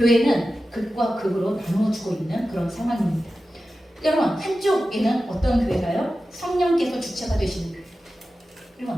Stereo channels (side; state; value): both; normal; correlation 0.93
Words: 극과 극으로 나누어지고 있는 그런 상황입니다. 여러분 한쪽에는 어떤 교회가요? 성령께서 주체가 되시는 교회.